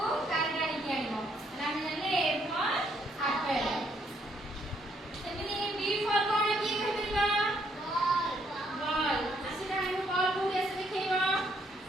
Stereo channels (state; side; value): normal; both; correlation 0.70